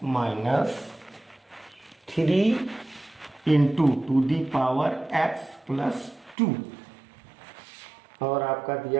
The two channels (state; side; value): drops out; left; at 6.4 s